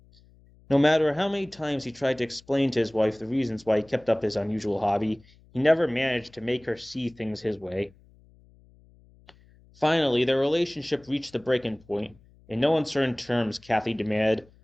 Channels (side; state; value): left; noise; hum, 28 dB below the sound